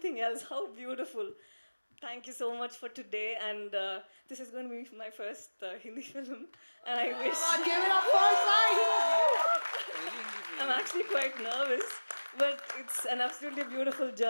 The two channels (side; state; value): both; inverted; correlation -1.00